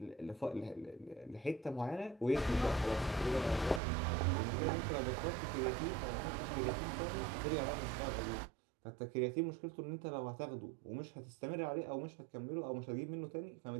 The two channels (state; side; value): drops out; left; at 3.8 s